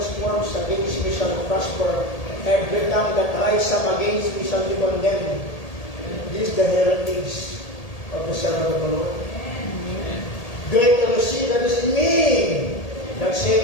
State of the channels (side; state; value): right; late; 1.8 ms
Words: formed against me shall prosper. Every tongue that rise up against me shall be condemned. This is the heritage of the servant of the Lord. Greater is he that is in me than he